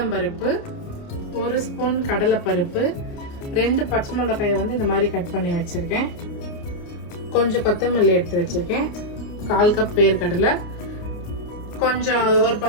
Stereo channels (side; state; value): right; late; 29 ms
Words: 1 ஸ்பூன் கடலைப்பருப்பு, 2 பச்சை மிளகாயை இந்த மாதிரி கட் பண்ணி வச்சுருக்கேன். கொஞ்சம் கொத்தமல்லி எடுத்து வச்சுருக்கேன். 1/4 கப் வேர்க்கடலை, கொஞ்சம் ஒரு